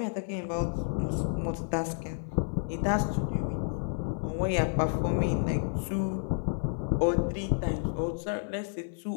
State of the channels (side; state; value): right; silent; 58 dB below the other